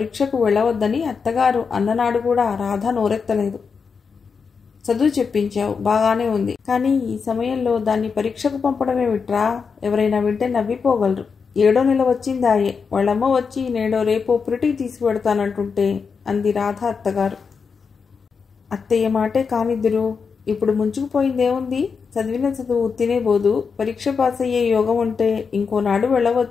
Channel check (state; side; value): quieter; right; 5.6 dB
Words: వెళ్ళవద్దని అత్తగారు అన్ననాడు కూడా రాధ నోరెత్తలేదు. చదువు చెప్పించావు, బాగానే ఉంది. కానీ ఈ సమయంలో దాన్ని పరీక్షకు పంపడమే విట్రా. ఎవరైనా వింటే నవ్విపోగలరు. 7వ నెల వచ్చిందాయే. వాళ్ళమ్మ వచ్చి నేడో రేపో పురిటికి తీసుకువెడతానంటుంటే అంది రాధ అత్తగారు. అత్తయ్య మాటే కానిద్దురు. ఇప్పుడు ముంచుకుపోయిందేముంది? చదివిన చదువు తినేబోదు. పరీక్ష పాస్ అయ్యే యోగం ఉంటే ఇంకోనాడు